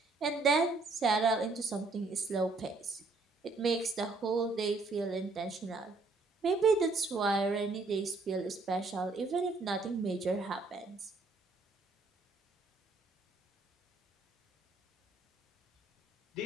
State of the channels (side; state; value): left; quieter; 3.6 dB